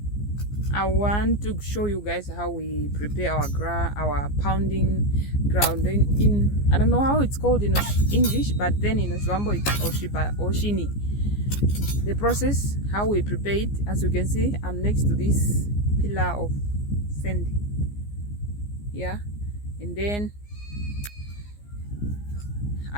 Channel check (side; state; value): right; late; 15 ms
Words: I want to show you guys how we prepare our pounding ground in I don't know how it's called in English, but then in Oswambo it's oshini. The process, how we prepare it. As you can see, I'm next to this pillar of sand, yeah, and then